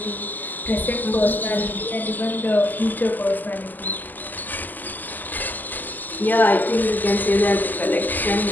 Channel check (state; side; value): late; right; 0.086 ms